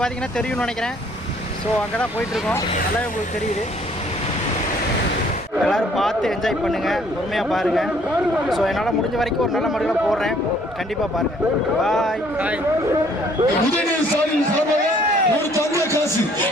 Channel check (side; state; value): both; normal; correlation 0.61